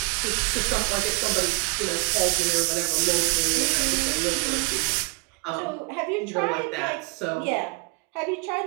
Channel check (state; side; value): quieter; left; 31.4 dB